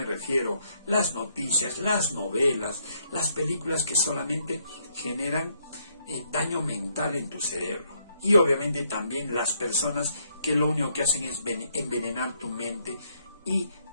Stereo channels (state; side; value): inverted; both; correlation -0.72